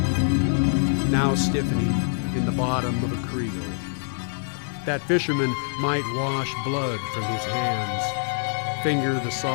now stiffening in the bottom of a creel. That fisherman might wash blood from his hands, finger the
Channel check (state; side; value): silent; right; 62 dB below the other